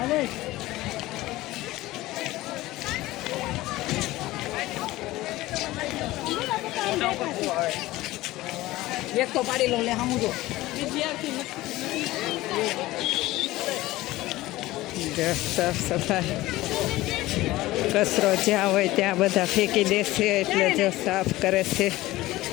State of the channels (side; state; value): right; quieter; 17.7 dB